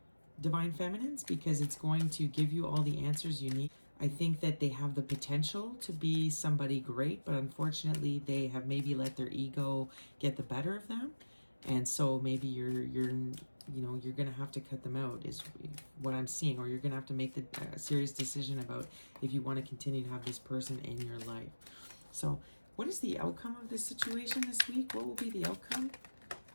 Feminines, because it's going to give you all the answers you need. I think that they have the potential to be somebody great, but unfortunately they have maybe let their ego get the better of them, and so maybe you're gonna have to cut them out is what I'm seeing, or you're gonna have to make the serious decision about if you want to continue to have this person in your life. So what is the outcome of this situation this week? What will be the outcome?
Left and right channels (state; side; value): inverted; both; correlation -1.00